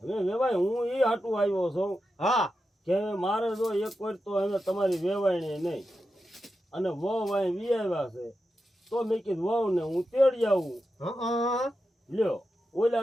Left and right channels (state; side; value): normal; both; correlation 0.89